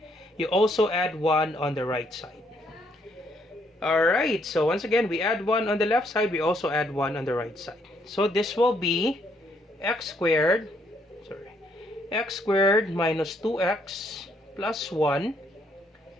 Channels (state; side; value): normal; both; correlation 0.71